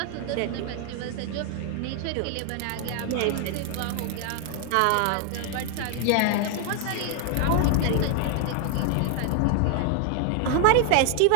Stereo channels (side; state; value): both; different; correlation 0.00